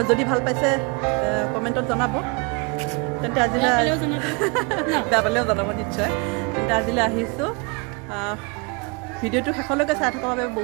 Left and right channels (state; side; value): quieter; left; 30.7 dB